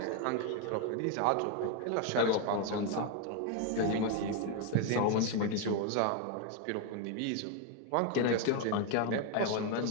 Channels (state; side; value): different; both; correlation 0.01